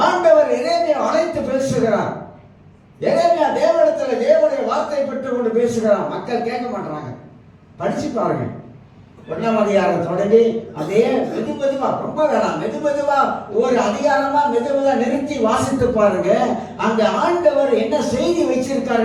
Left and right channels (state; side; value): identical; both; correlation 1.00